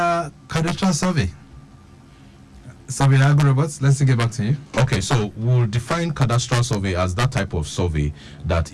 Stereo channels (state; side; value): identical; both; correlation 1.00